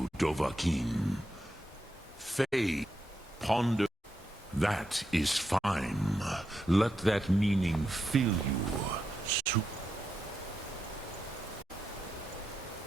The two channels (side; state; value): both; normal; correlation 0.85